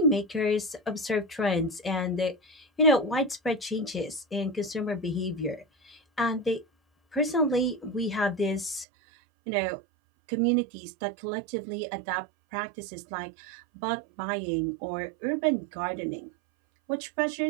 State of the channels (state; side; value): drops out; left; at 8.8 s